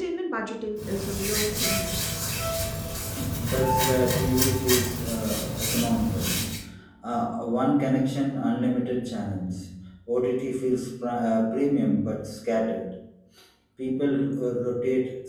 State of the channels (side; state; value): both; identical; correlation 1.00